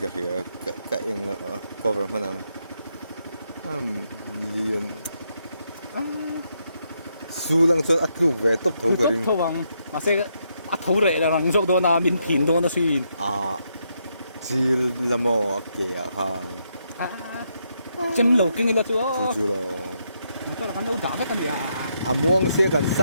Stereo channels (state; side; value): inverted; both; correlation -0.78